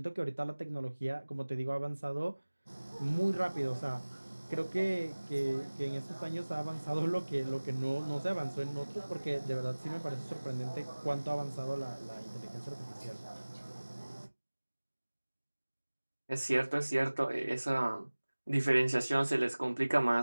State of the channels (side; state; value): both; inverted; correlation -1.00